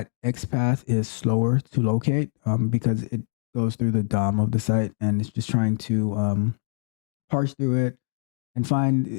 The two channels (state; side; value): silent; right; digital silence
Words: XPath is slower to locate because it goes through the DOM of the site and it's just trying to parse through it and find